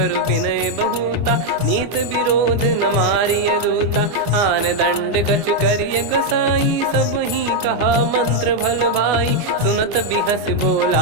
विनय बहुता, नीत विरोध न मारिय दूता। आन दंड कछु करिय गसाई, सब ही कहा मंत्र भल भाई। सुनत बिहस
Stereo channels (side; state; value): left; late; 25 ms